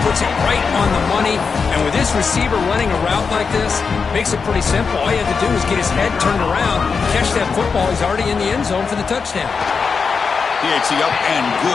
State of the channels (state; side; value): quieter; right; 5.3 dB